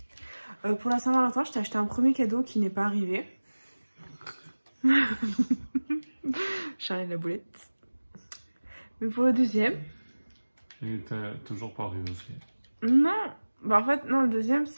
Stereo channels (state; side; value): inverted; both; correlation -1.00